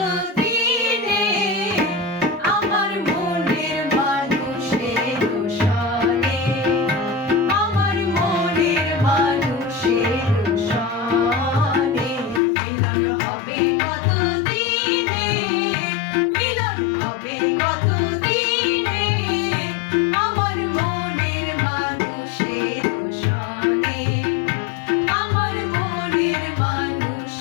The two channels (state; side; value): drops out; right; at 12.4 s